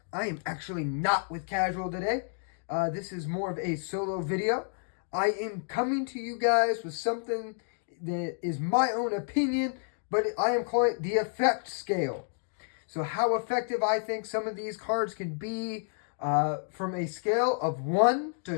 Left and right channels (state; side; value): silent; right; digital silence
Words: I am actually not with Casual today. This is more of a solo video. I am coming to you guys with something that is my own opinion, but I am calling it the effect scale. So how effective I think some of these cards can be from a scale of 1